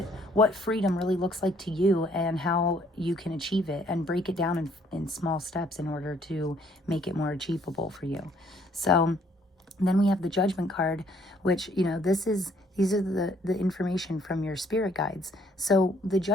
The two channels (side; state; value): both; normal; correlation 0.64